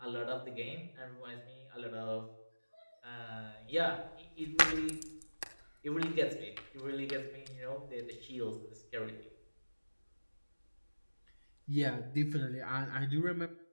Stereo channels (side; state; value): both; inverted; correlation -1.00